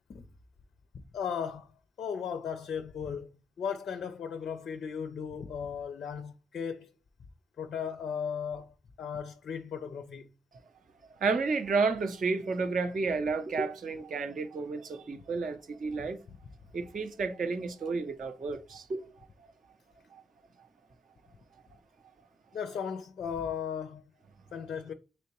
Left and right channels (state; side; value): normal; both; correlation 0.69